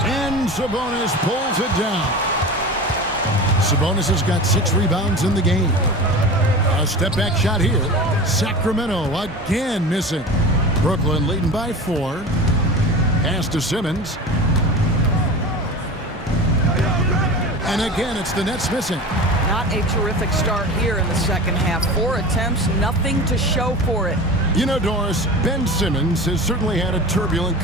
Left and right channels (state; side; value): normal; both; correlation 0.33